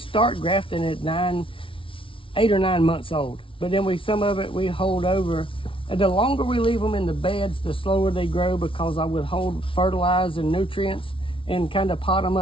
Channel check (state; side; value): late; right; 0.25 ms